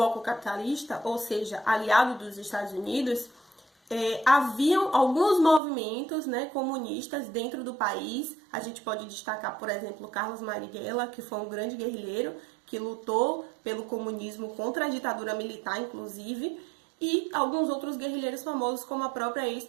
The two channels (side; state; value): left; drops out; at 5.6 s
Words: capitalista, ou seja, aliado dos Estados Unidos, haviam alguns movimentos, comunistas dentro do país. A gente pode destacar, por exemplo, Carlos Marighella, que foi um grande guerrilheiro, que lutou pelo comunismo contra a ditadura militar, inclusive, e alguns outros guerrilheiros famosos, como a própria